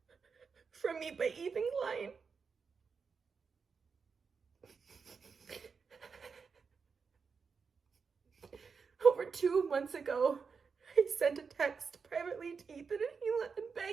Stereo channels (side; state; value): left; quieter; 5.5 dB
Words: from me by Ethan Klein. Over 2 months ago, I sent a text privately to Ethan and Hila and